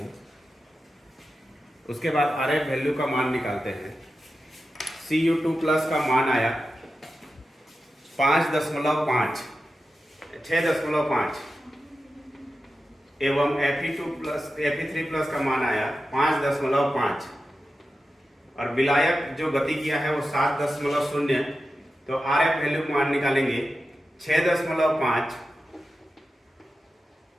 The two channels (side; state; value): both; normal; correlation 0.91